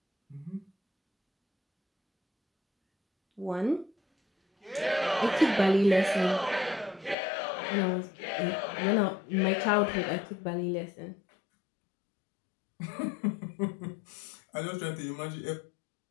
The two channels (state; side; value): drops out; right; at 7.2 s